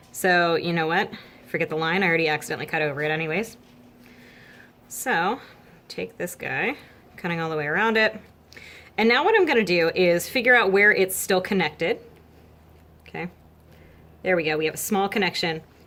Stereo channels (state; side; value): identical; both; correlation 1.00